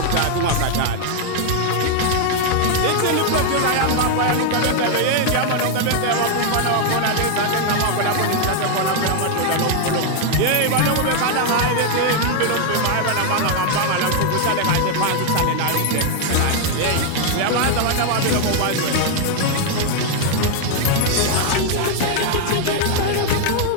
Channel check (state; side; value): different; both; correlation 0.00